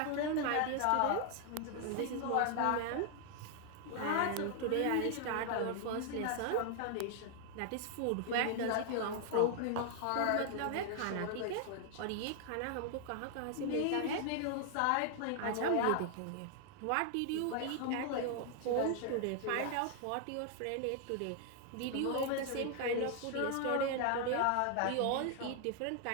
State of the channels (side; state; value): both; different; correlation 0.00